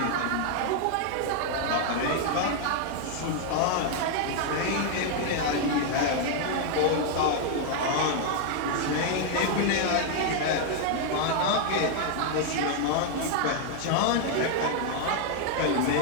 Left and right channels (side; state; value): both; different; correlation 0.00